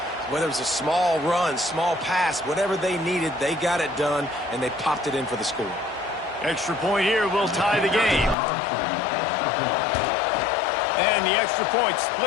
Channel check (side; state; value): right; drops out; at 8.3 s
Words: Whether it was a small run, small pass, whatever they needed, they got it done, and they popped it in for the score. Extra point here will tie the game. And the extra point